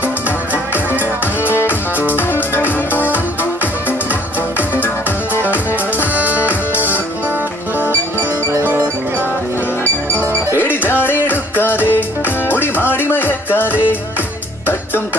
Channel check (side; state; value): both; normal; correlation 0.59